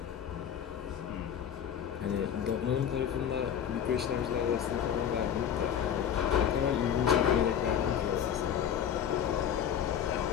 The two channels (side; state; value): right; quieter; 8.9 dB